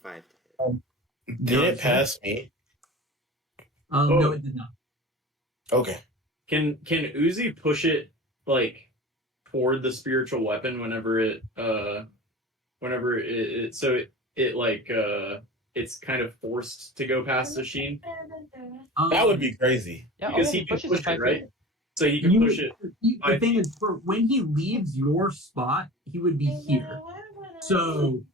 to hit. Did it pass me? No, it did not. Okay. Can Uzi push it like toward the spiritual weapon whenever it it's kind of forced to go past the Sheen? That would be crazy. Yeah, Because oh, he can pushes push to it, 5 feet. right? So he can push it. The thing is, for when he leaves your spot, he would be here. So,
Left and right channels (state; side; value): normal; both; correlation 0.35